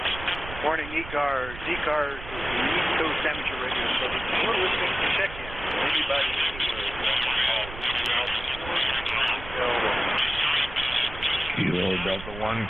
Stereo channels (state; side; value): noise; right; rumble, 12 dB below the sound